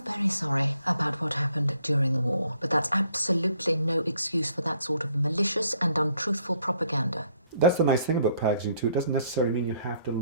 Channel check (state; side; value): inverted; both; correlation -0.66